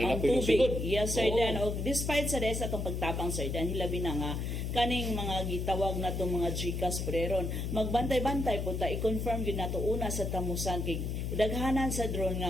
tubig. Yes, sir Dan. O, despite sa rest atong pagtabang, sir Dan, hilabi na nga, kaning mga gitawag na itong mga GCash preron, magbantay-bantay po ta, i-confirm yun na ito una sa tamusan, kay daghanan sa drone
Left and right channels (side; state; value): left; noise; hum, 2 dB below the sound